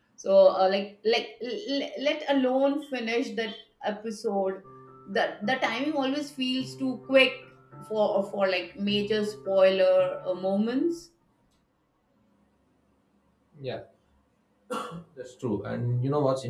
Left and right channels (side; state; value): both; identical; correlation 1.00